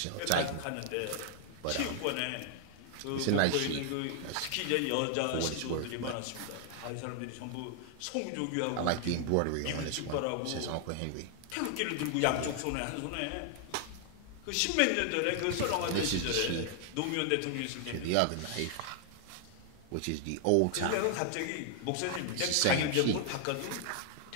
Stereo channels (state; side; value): different; both; correlation 0.00